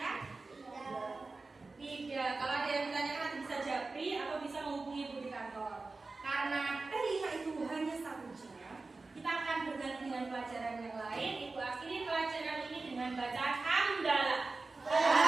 Tidak. Kalau ada yang ditanyakan nanti bisa japri atau bisa menghubungi Ibu di kantor. Karena P5 itu hanya 1 jam, kita akan berganti dengan pelajaran yang lain. Ibu akhiri pelajaran ini dengan bacaan hamdalah.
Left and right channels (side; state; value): left; quieter; 3.7 dB